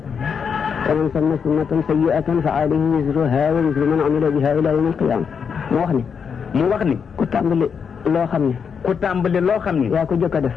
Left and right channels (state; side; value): quieter; right; 6.6 dB